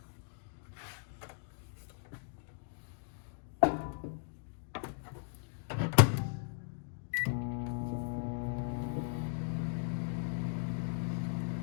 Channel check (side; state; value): right; silent; digital silence